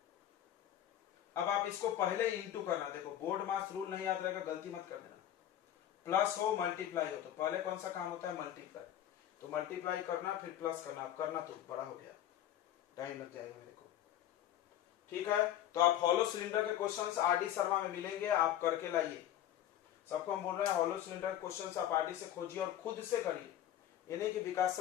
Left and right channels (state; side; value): quieter; right; 11.6 dB